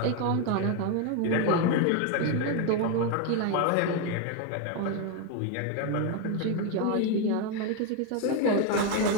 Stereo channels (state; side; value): different; both; correlation 0.01